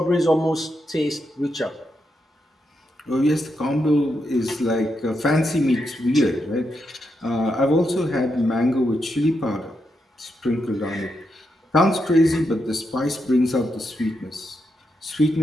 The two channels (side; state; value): both; normal; correlation 0.83